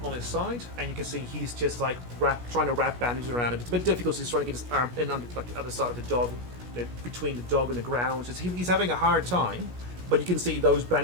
his side, and you can see he's just like trying to wrap bandages around it. It's a bit difficult. So he's trying to get his arm in under like the other side of the dog, between the dog and the ground. So he's having a hard time, but you can see those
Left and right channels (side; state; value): left; late; 17 ms